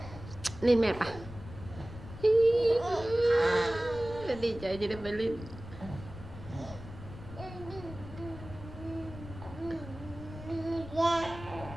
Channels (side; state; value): left; noise; rumble, 13 dB below the sound